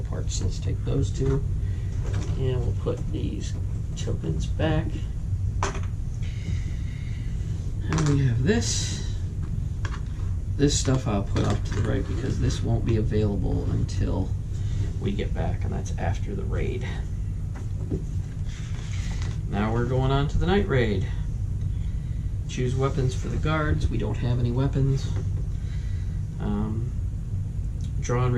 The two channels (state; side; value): identical; both; correlation 1.00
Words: parts, so let's take those 2. And we'll put these tokens back. And we have this. This stuff I'll put off to the right because this won't be available until we get back, and that's after the raid. Now we're going on to the night raid. Choose weapons for the guards. We don't have any weapons. Draw and